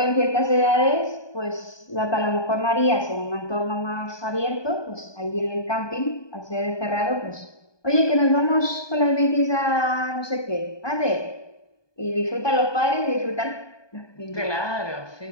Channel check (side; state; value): right; late; 1.2 ms